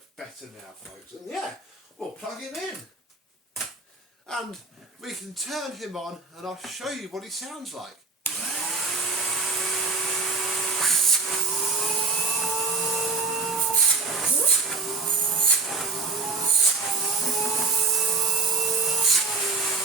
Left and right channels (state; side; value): quieter; left; 4.3 dB